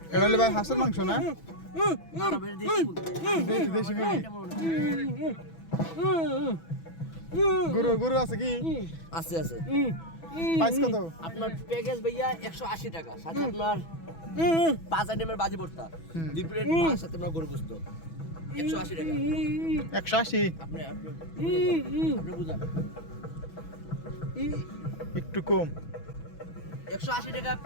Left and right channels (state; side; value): late; right; 6.1 ms